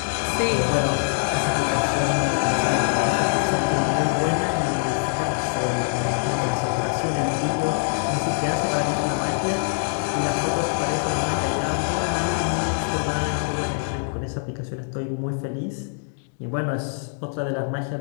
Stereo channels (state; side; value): silent; right; digital silence